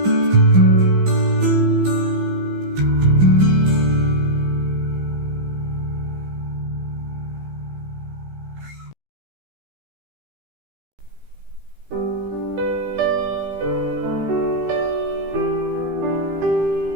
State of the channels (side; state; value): left; late; 15 ms